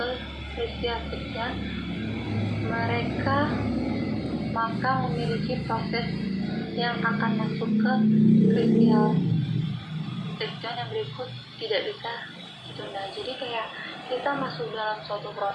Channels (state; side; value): identical; both; correlation 1.00